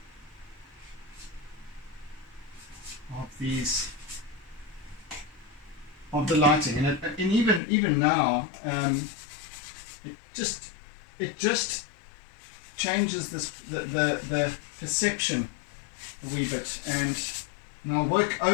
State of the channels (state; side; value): drops out; right; at 7.6 s